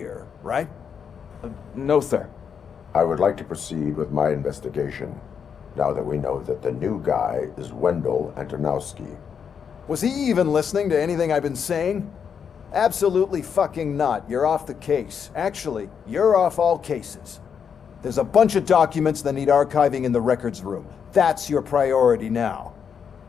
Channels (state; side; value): quieter; right; 7.1 dB